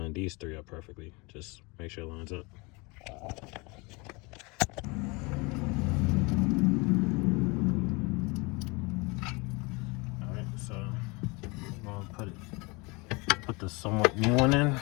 these 3 up perfectly. Just make sure it lines up. put this somewhat new one in,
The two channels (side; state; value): right; quieter; 27.2 dB